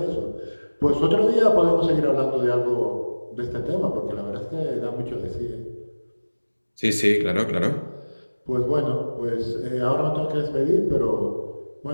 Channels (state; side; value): inverted; both; correlation -1.00